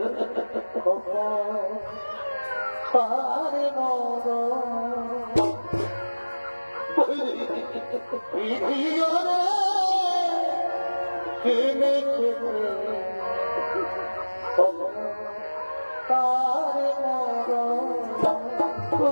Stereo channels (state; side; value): inverted; both; correlation -1.00